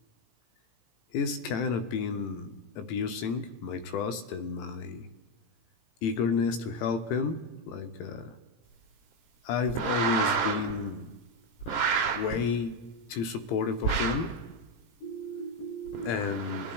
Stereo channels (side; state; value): right; late; 17 ms